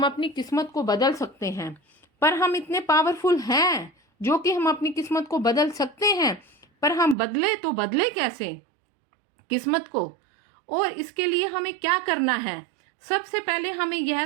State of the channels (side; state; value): left; drops out; at 7.2 s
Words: अपनी किस्मत को बदल सकते हैं। पर हम इतने पावरफुल हैं जो कि हम अपनी किस्मत को बदल सकते हैं, पर हम बदले तो बदले कैसे किस्मत को? और इसके लिए हमें क्या करना है? सबसे पहले हमें